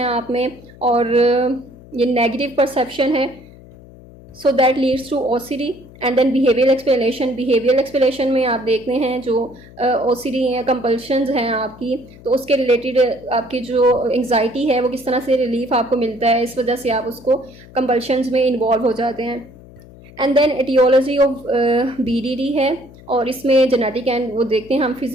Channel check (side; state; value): left; noise; hum, 21 dB below the sound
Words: आप में, और ये नेगेटिव परसेप्शन है, so that leads to OCD. And then behavioural explanation, behavioural explanation में आप देखते हैं जो ओसीडी या कंपल्शंस हैं आपकी, तो उसके रिलेटेड आपकी जो एंग्जाइटी है वो किस तरह से रिलीफ आपको मिलता है, इस वजह से आप उसको कंपल्शंस में इन्वॉल्व हो जाते हैं। And then aetiology of BDD है, और इसमें जेनेटिक एंड वो देखते हैं हम